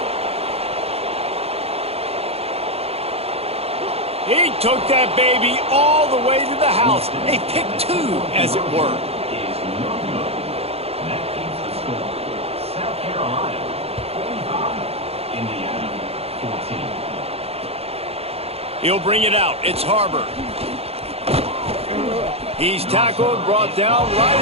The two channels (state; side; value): late; left; 0.29 ms